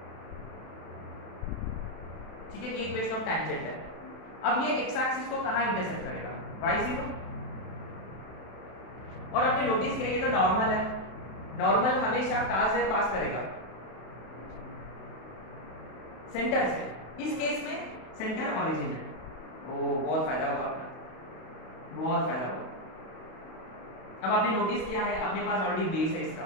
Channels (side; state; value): right; late; 31 ms